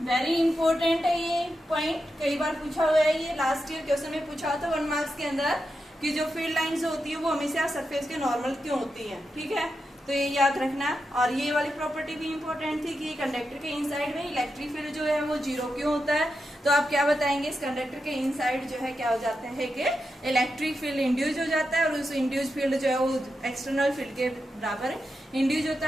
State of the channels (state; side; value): normal; both; correlation 0.88